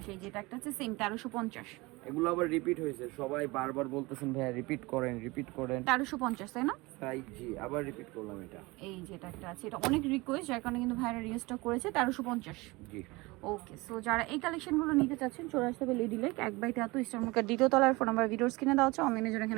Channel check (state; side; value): quieter; left; 23.2 dB